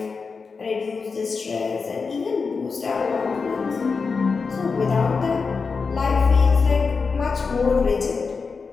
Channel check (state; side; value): quieter; right; 4.9 dB